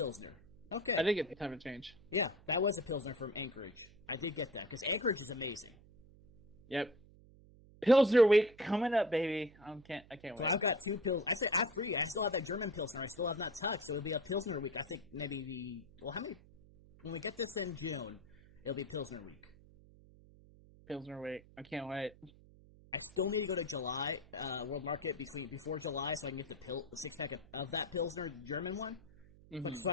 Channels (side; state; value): right; noise; hum, 23 dB below the sound